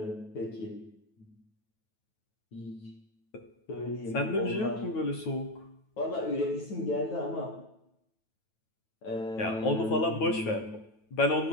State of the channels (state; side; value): late; right; 9.2 ms